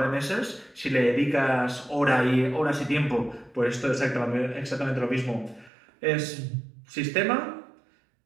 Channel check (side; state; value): left; drops out; at 5.7 s